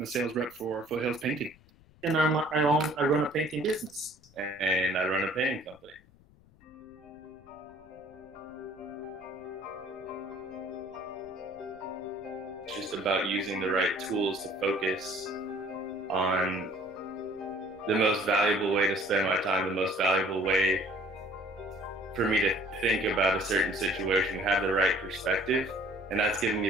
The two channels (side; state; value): left; noise; rumble, 27 dB below the sound